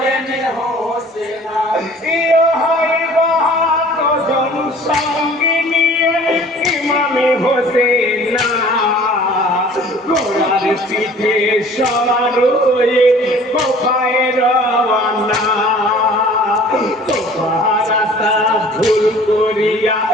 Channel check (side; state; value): both; normal; correlation 0.49